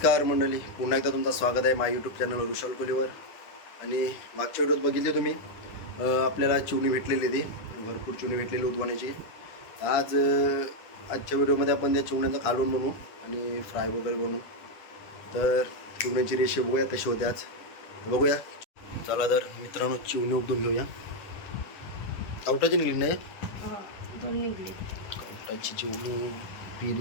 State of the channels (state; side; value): late; right; 10 ms